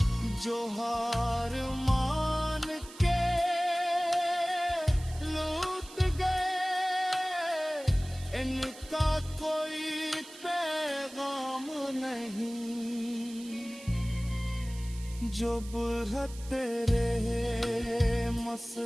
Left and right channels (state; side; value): noise; right; hiss, 18 dB below the sound